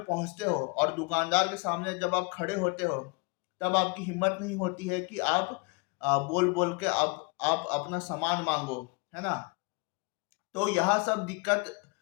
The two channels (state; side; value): quieter; right; 30.6 dB